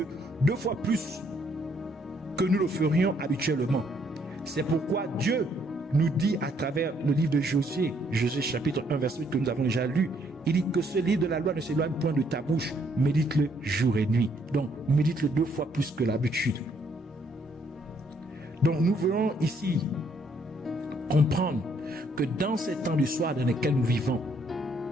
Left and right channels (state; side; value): normal; both; correlation 0.69